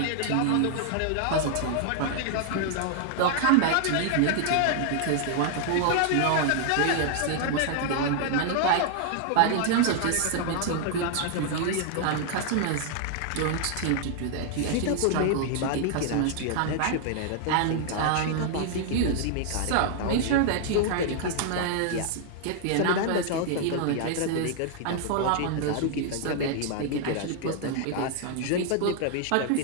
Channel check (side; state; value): both; different; correlation 0.00